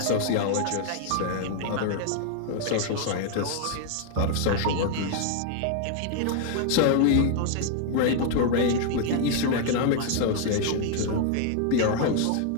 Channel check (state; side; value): different; both; correlation 0.00